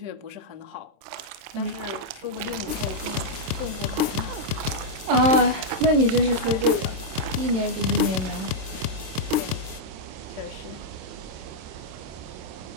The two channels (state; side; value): late; left; 26 ms